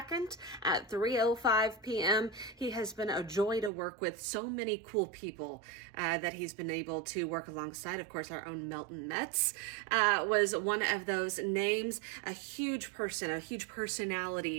at 3:05 p.m. He has been a joy to work with. So many cool people that he's been able to work alongside. Of course, our own Melton Metz was one of those names. A huge person, a huge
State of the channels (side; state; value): left; drops out; at 3.7 s